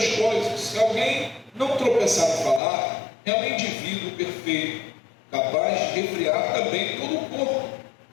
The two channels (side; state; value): right; drops out; at 2.6 s